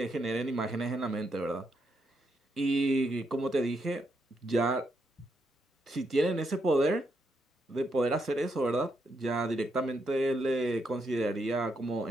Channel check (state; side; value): normal; both; correlation 0.80